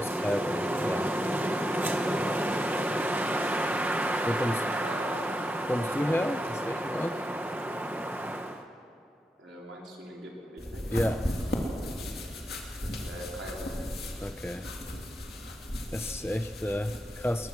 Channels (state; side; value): normal; both; correlation 0.85